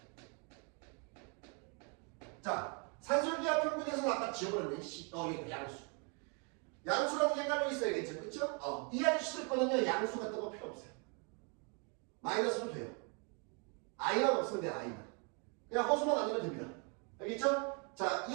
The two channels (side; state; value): left; quieter; 36.3 dB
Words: 자, 산술기하 평균에서는 아까 지워버렸네. 이거 양수. 양수라는 게 깔려 있어야겠죠. 그쵸? 이 아저씨들 거는요, 양수 같은 거 필요 없어요. 마이너스로 돼요. i만 없으면 돼요, i만. 그냥 허수만 아니면 됩니다. 알겠죠? 자,